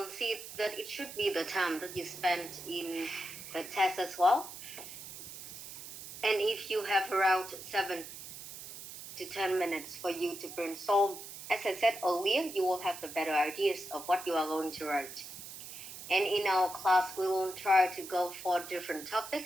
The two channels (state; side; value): noise; right; hiss, 12 dB below the sound